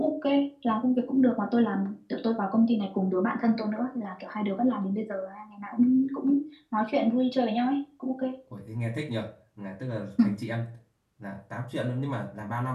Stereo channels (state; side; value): identical; both; correlation 1.00